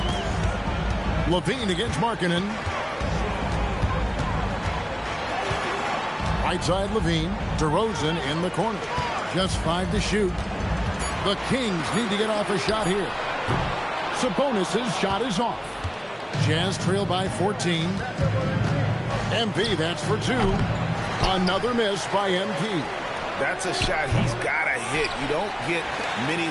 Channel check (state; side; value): identical; both; correlation 1.00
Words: LaVine against Markkanen. Right side LaVine. DeRozan in the corner. Just 5 to shoot. The Kings need to get off a shot here. Sabonis' shot is off. Jazz trail by 14. MP, that's for 2. Another miss by MP. That's a shot he's got to hit. You don't get many